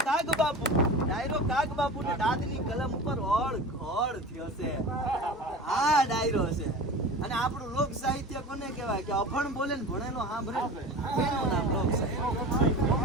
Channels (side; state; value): both; normal; correlation 0.34